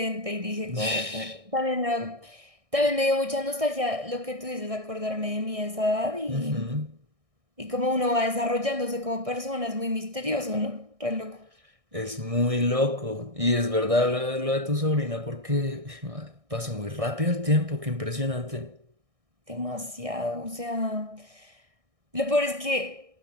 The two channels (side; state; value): left; late; 1.6 ms